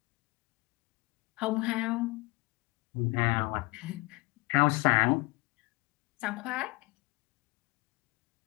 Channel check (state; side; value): quieter; right; 23.9 dB